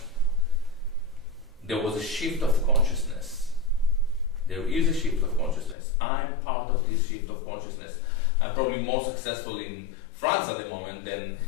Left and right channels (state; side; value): drops out; right; at 5.8 s